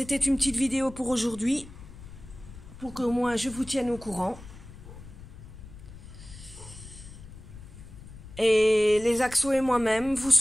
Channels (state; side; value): noise; left; rumble, 16 dB below the sound